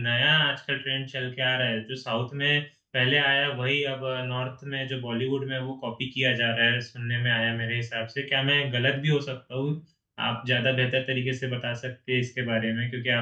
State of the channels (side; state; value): both; identical; correlation 1.00